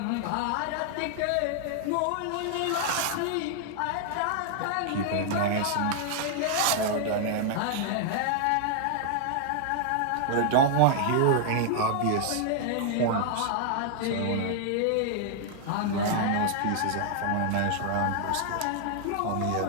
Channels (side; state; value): both; different; correlation 0.00